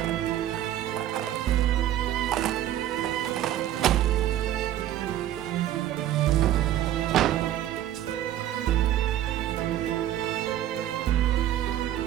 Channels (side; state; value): left; quieter; 12.6 dB